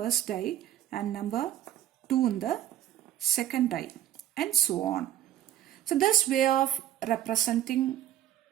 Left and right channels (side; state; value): left; quieter; 11.8 dB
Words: die and number 2 in the second die, and so on. So this way of representing